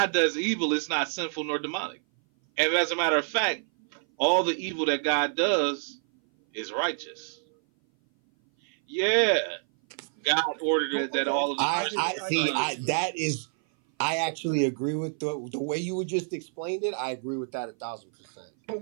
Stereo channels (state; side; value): silent; left; 57 dB below the other